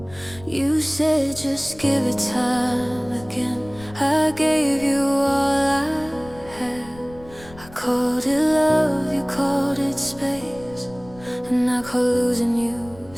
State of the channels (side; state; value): left; noise; rumble, 20 dB below the sound